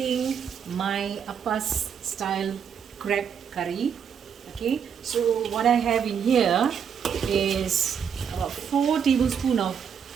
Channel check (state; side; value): quieter; left; 7.5 dB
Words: my Appa style crab curry. Okay, so what I have in here is about 4 tablespoons